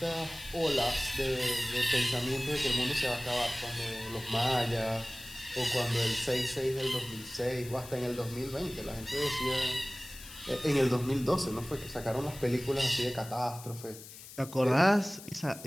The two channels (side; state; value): left; noise; hiss, 15 dB below the sound